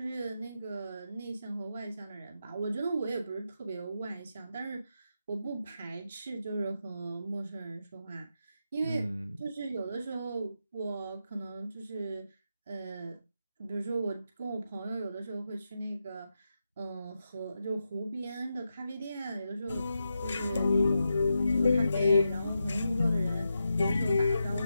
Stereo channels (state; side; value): inverted; both; correlation -0.87